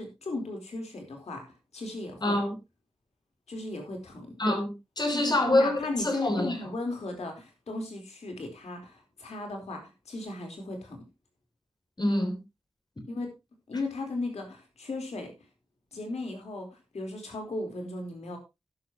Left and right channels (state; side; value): normal; both; correlation 0.80